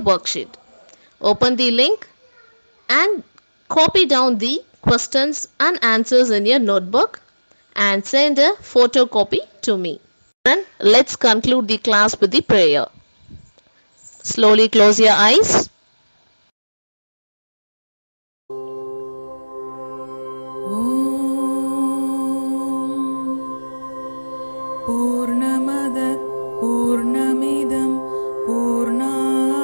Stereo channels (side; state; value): both; inverted; correlation -1.00